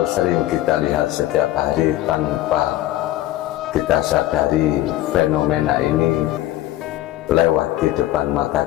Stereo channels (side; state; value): right; quieter; 14.8 dB